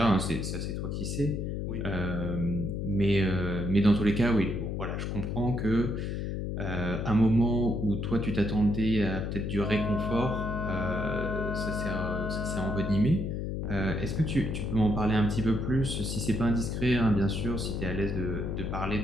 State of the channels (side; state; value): left; noise; hum, 2 dB below the sound